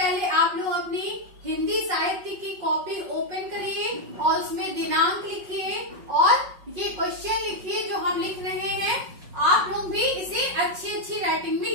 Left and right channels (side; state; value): left; late; 5.4 ms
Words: आप लोग अपनी हिंदी साहित्य की कॉपी ओपन करिए और उसमें दिनांक लिखिए और ये क्वेश्चन लिखिए जो हम लिख रहे हैं। आप लोग भी इसे अच्छी राइटिंग में